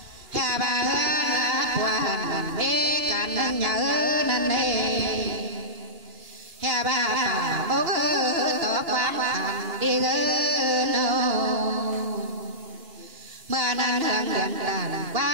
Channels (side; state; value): left; late; 2.9 ms